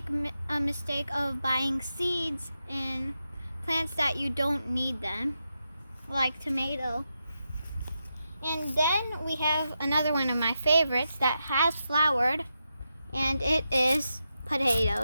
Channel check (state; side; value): inverted; both; correlation -0.87